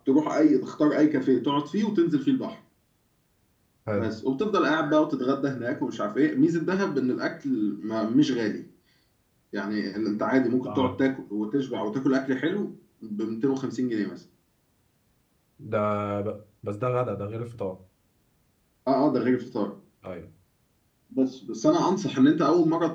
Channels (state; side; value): identical; both; correlation 1.00